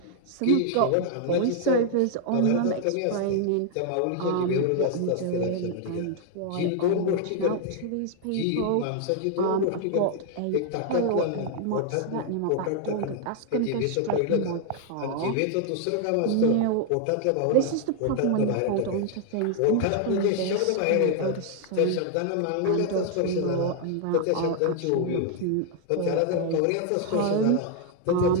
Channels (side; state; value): both; different; correlation 0.00